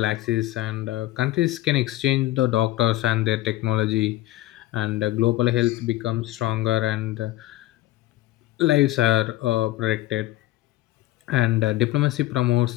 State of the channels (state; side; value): quieter; right; 16.8 dB